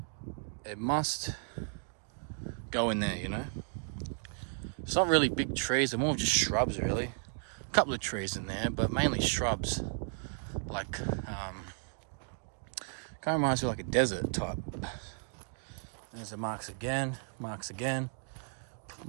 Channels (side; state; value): left; silent; 55 dB below the other